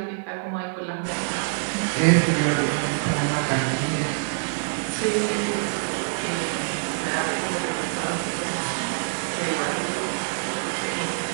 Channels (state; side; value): silent; left; digital silence